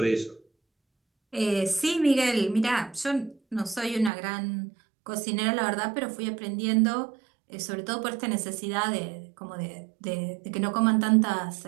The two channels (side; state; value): left; drops out; at 4.1 s